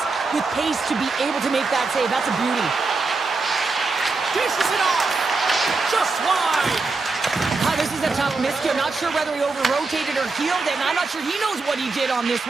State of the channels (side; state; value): left; quieter; 3.9 dB